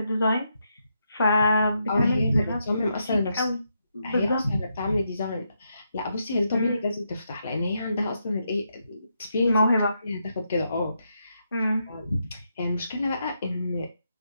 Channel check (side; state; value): both; inverted; correlation -0.81